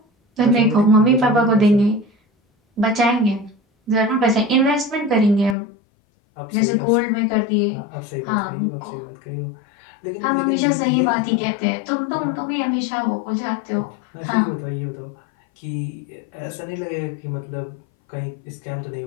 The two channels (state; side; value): drops out; right; at 5.6 s